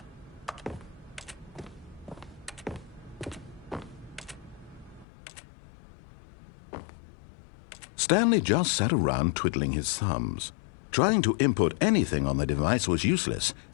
Stanley just sat around twiddling his thumbs. Trying to input anything on the device was useless,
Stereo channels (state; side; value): drops out; right; at 5.1 s